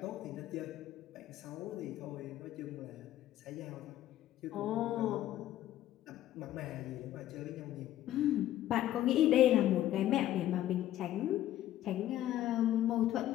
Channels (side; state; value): right; quieter; 13.1 dB